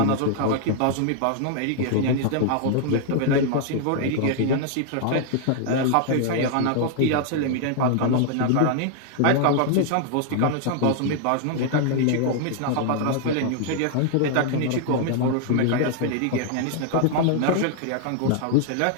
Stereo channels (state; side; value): different; both; correlation 0.00